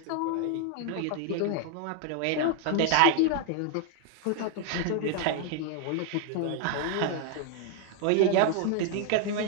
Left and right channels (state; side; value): different; both; correlation 0.00